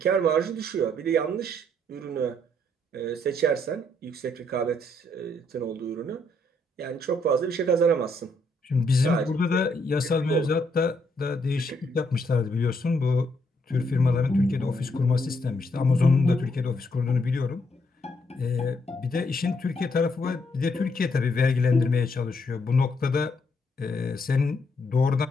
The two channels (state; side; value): normal; both; correlation 0.73